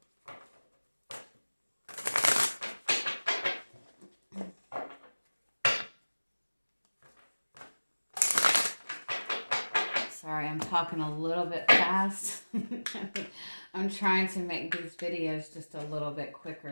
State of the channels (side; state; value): both; inverted; correlation -1.00